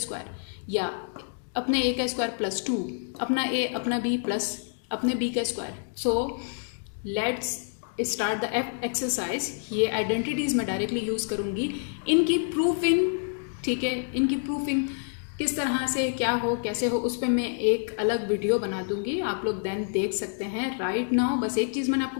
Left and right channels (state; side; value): silent; right; digital silence